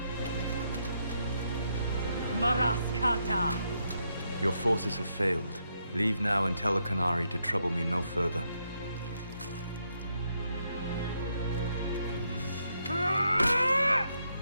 Maraskata! Your forces have failed. Leave now and tell the Canary to trouble me no further.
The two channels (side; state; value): both; inverted; correlation -0.78